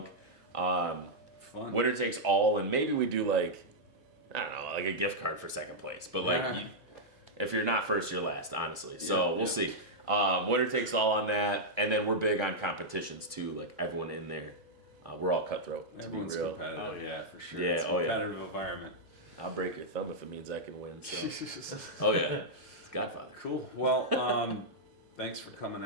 Fun. Winner takes all, and maybe we do like, I don't know, like a gift card for second place. But like, Yeah. if you're not first, you're last, honestly. So Yeah, we'll yeah. see. Winner takes all on that, and then we're big on competitions too. Like everyone in there, we're all cutthroat. To Everyone's be real, competitive. Oh, yeah. For sure. Yeah, It's a oh, yeah. competitive environment. I'll break your thumb if it means I can win. So. Oh yeah, it's Godfather. Cool. Well, thanks for coming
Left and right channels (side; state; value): both; normal; correlation -0.06